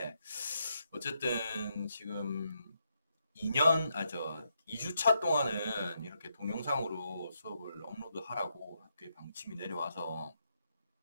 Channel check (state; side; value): inverted; both; correlation -0.80